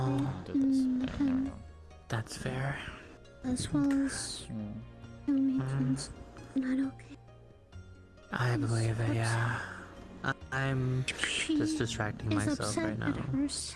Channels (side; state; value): both; identical; correlation 1.00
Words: great. And That's fair. as well as matrons not okay. I believe it, yeah. I'm just distracting She's myself upset right now. at